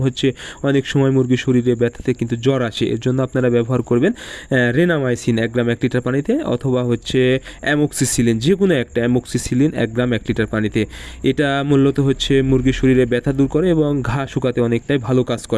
অনেক সময় মুরগির শরীরে ব্যথাতে কিন্তু জ্বর আসে। এর জন্য আপনারা ব্যবহার করবেন রেনামাইসিন 1 গ্রাম 1 লিটার পানিতে, অথবা অ্যামোক্সিসিলিন, যে কোনো একটা অ্যামোক্সিসিলিন 1 গ্রাম 1 লিটার পানিতে। এটা মূলত মুরগির শরীরে ব্যথা দূর করে এবং ঘা শুকাতে অনেকটাই ভালো কাজ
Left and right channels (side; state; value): both; identical; correlation 1.00